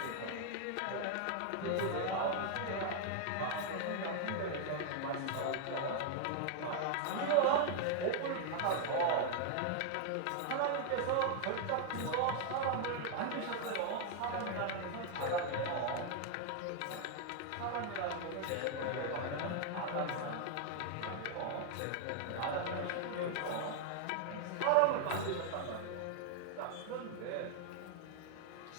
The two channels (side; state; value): both; different; correlation 0.00